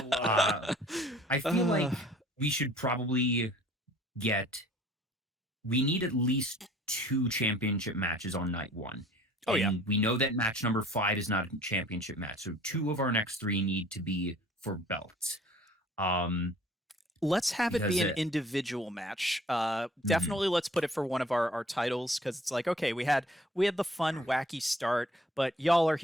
I feel like we should probably we need at least 2 championship matches on night 1. Oh, yeah. We know that match number 5 is not a championship match, so 2 of our next 3 need to be for belts. Let's have it be an individual match. Definitely let's put it for one of our titles, because it's like, okay, we had the fun, wacky start, but y'all are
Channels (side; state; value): both; normal; correlation 0.53